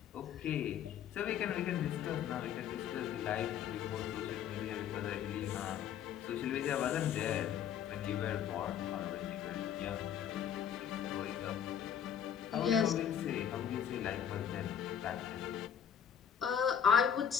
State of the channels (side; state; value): right; quieter; 8.8 dB